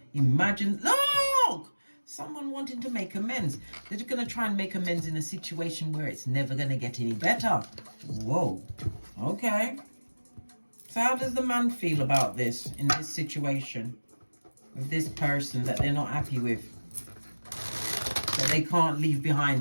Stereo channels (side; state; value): both; inverted; correlation -1.00